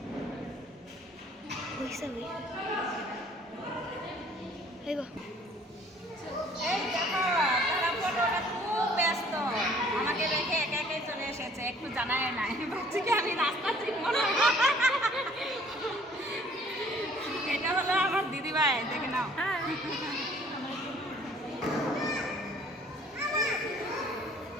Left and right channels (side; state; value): both; normal; correlation 0.56